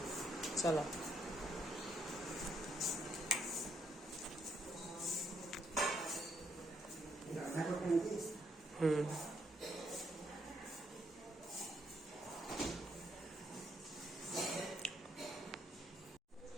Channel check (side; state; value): both; normal; correlation 0.74